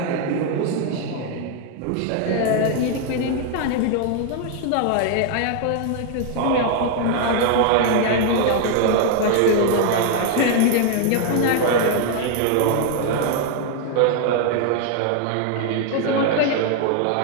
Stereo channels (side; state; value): both; different; correlation 0.00